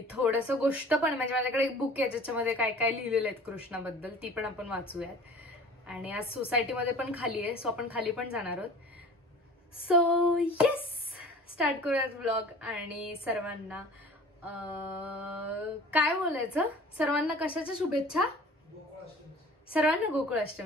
थोडंसं गोष्ट पण, म्हणजे माझ्याकडे एक बुक आहे ज्याच्यामध्ये काय काय लिहिलेलं आहे कृष्णाबद्दल, ती पण आपण वाचूयात. आणि आज सोसायटीमध्ये पण खाली आहे, सो आपण खाली पण जाणार आहोत. सो येस, स्टार्ट करूयात व्लॉग. आणि सर्वांना काय बोलायचं, सर्वांना कशाच्या शुभेच्छा? सर्वांना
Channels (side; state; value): both; normal; correlation 0.45